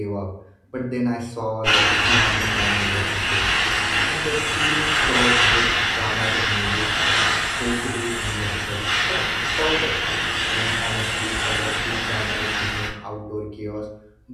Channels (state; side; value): identical; both; correlation 1.00